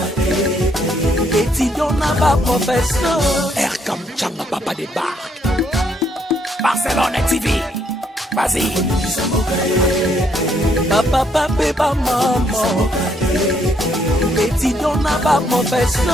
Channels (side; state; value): both; normal; correlation 0.71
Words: Étudiant n'a pas professeur. Erkam Chamba, papa débarque. Barcelone TV. Vas-y. Papa, papa, maman. Étudiant n'a pas